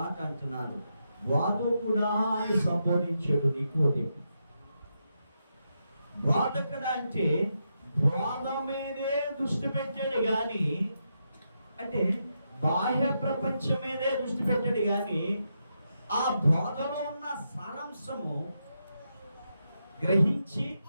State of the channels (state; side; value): inverted; both; correlation -0.84